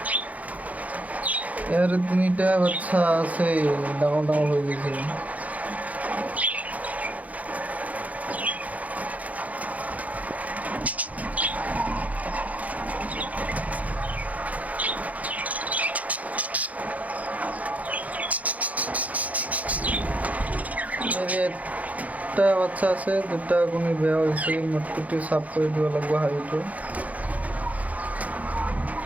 ইয়াৰ 3টা বাচ্চা আছে, ডাঙৰ ডাঙৰ হৈ গৈছে। একটা বাচ্চা আছে, 2টা কণী বেয়া হৈছে। মটকুটি চাফ কৰি দিব লাগিব হাঁড়িটো।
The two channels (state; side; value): late; left; 0.072 ms